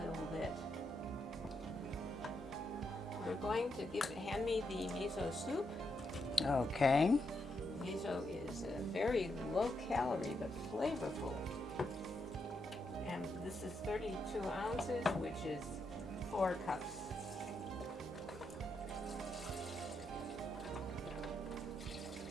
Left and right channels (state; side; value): normal; both; correlation 0.81